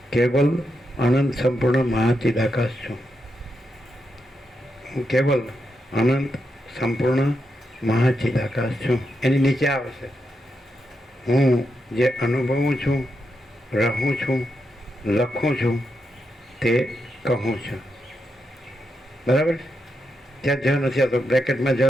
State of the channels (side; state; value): both; normal; correlation 0.84